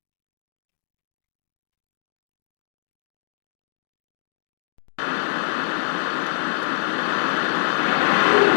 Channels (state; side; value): silent; right; digital silence